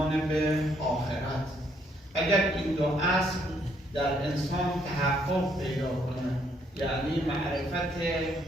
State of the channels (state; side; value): normal; both; correlation 0.70